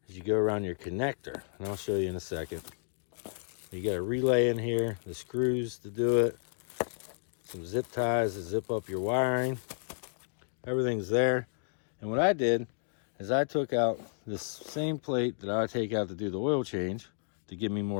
is you go around your connector, and I'll show you in a second. You got a relay in here, the screws to do it, some zip ties to zip up your wiring. Everything's there. And what I did is I took out this same plate that I take out to do the oil change to give me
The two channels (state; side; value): silent; right; digital silence